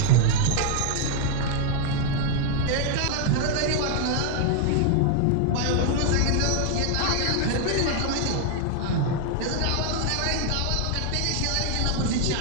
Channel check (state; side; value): different; both; correlation 0.00